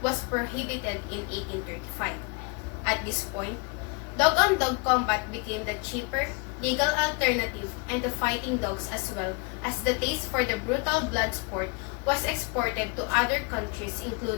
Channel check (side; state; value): right; quieter; 30.1 dB